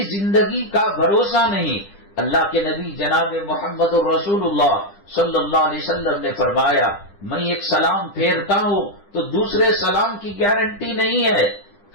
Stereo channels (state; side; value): late; right; 10 ms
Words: زندگی کا بھروسہ نہیں۔ اللہ کے نبی جناب محمد رسول اللہ صلی اللہ علیہ وسلم نے فرمایا میں ایک سلام پھیرتا ہوں تو دوسرے سلام کی گارنٹی نہیں ہے۔